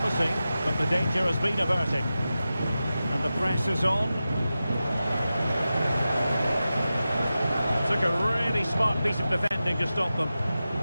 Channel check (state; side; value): inverted; both; correlation -0.93